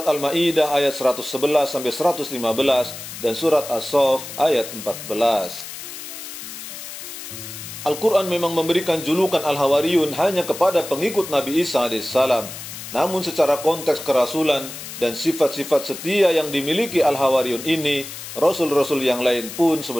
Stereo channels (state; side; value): noise; left; hiss, 11 dB below the sound